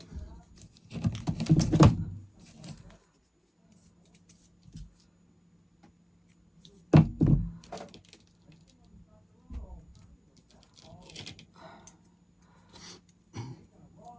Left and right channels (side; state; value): both; identical; correlation 1.00